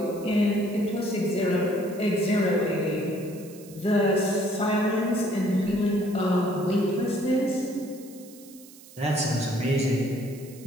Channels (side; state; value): right; noise; hiss, 21 dB below the sound